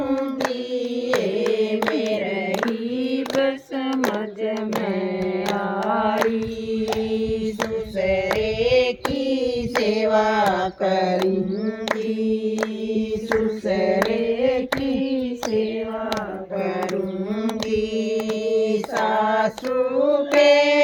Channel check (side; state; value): both; identical; correlation 1.00